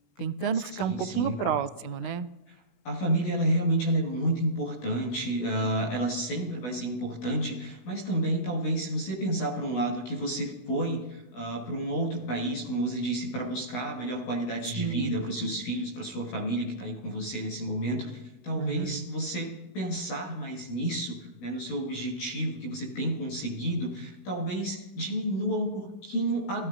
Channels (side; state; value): right; late; 16 ms